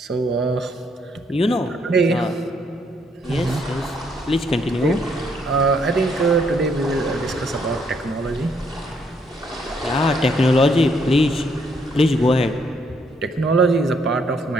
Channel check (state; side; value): normal; both; correlation 0.71